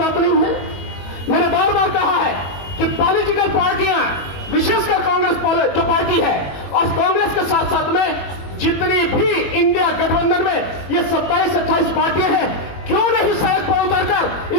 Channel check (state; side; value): late; right; 21 ms